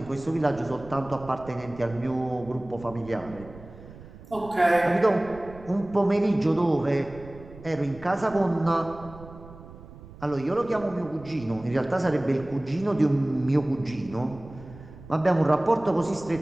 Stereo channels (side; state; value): right; noise; rumble, 18 dB below the sound